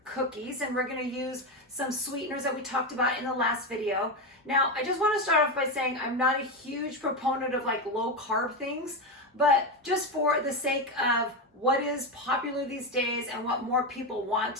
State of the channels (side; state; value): both; normal; correlation 0.13